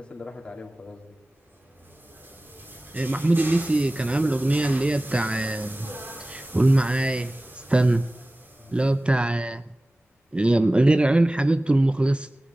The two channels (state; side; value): normal; both; correlation 0.97